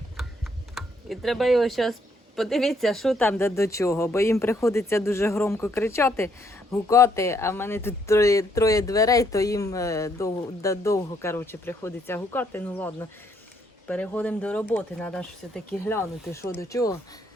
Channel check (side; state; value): both; normal; correlation 0.71